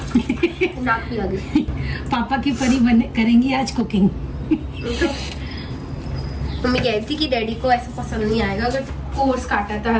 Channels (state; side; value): identical; both; correlation 1.00